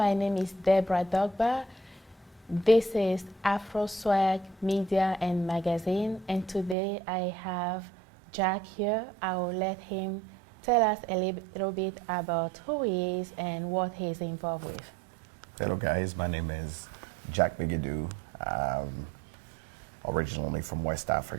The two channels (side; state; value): left; drops out; at 6.8 s